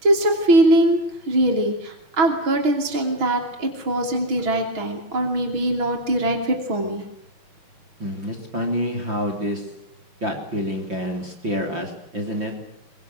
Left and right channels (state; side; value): late; left; 6.2 ms